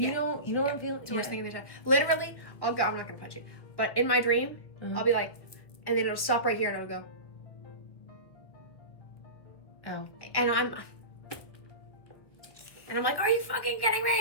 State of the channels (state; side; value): late; right; 1.6 ms